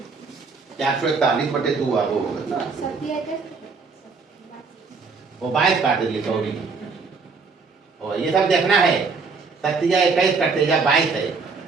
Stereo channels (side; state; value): left; quieter; 4.7 dB